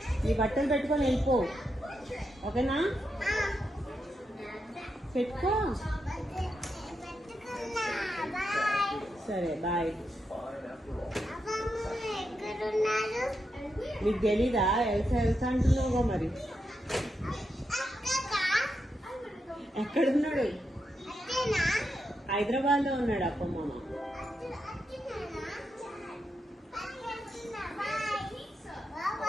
నీ బట్టలు పెట్టుకొని వెళ్ళిపో, ఓకేనా? పెట్టుకో. సరే బాయ్. నీకు తెలీదా? ఎల్సా ఎల్సా అంటున్నావుగా మరి. ఎక్కడున్నాడు? హైదరాబాద్ లో ఉన్నాడు అప్ప మామ.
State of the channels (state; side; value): normal; both; correlation 0.85